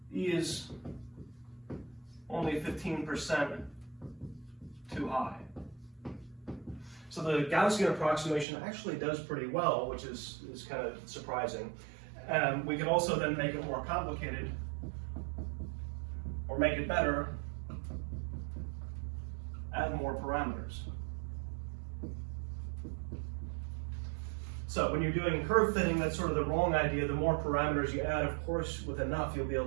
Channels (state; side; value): drops out; left; at 8.5 s